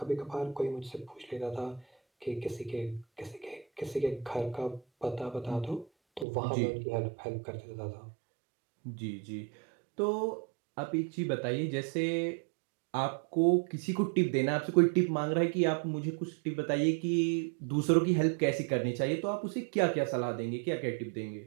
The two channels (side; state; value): left; drops out; at 6.2 s